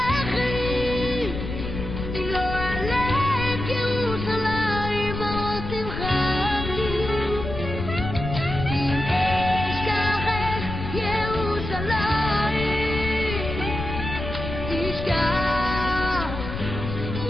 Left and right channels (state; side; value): noise; left; rumble, 6 dB below the sound